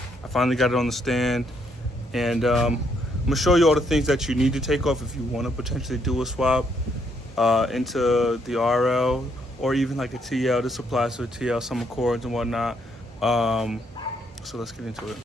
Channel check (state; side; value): normal; both; correlation 0.73